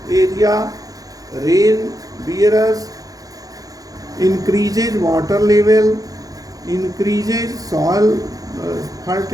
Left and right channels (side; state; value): left; late; 0.17 ms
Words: area, rain bearers, increases water level, increases soil